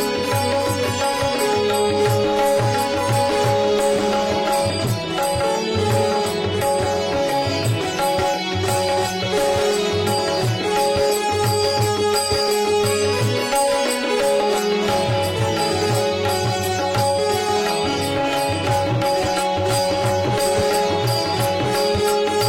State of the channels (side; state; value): both; identical; correlation 1.00